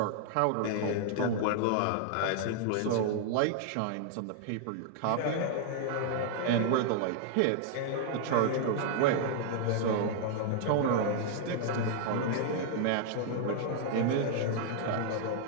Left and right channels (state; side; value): different; both; correlation 0.00